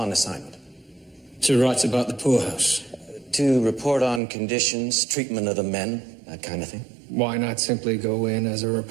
assignment. To write about the poorhouse. To report on conditions, treatment of the men, that kind of thing. Why not simply go in as a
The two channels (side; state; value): left; drops out; at 4.2 s